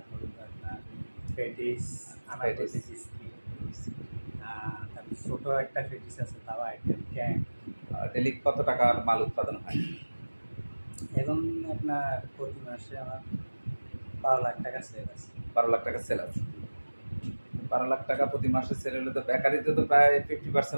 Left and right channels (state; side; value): inverted; both; correlation -1.00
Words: আপনার পেটিস, আনারকলি বিস্কিট, তারপর ছোটো একটা পেটিস আছে, তাও আইটেম ক্যাং। ডেলি কত টাকার মাল উৎপাদন হয়? এখন আপনার প্রতি মাসে আমার 12 লাখ টাকা সেল আছে। 12 লাখ টাকা সেল আছে। 12 লাখ টাকা প্রতি মাসে সেল হলে তো বেকারিতে তো প্রায়